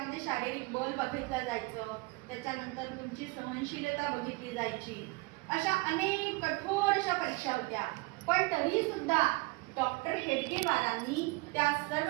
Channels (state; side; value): quieter; left; 25.1 dB